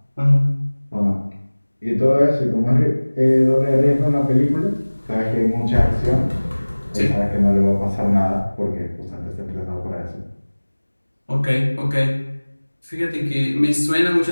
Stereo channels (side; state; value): both; inverted; correlation -1.00